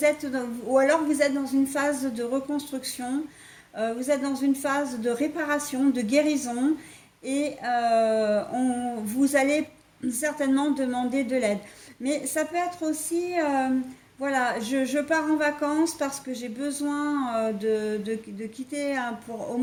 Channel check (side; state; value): both; identical; correlation 1.00